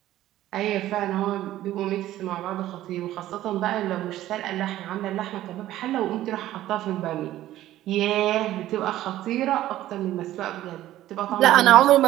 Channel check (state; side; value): quieter; left; 14.1 dB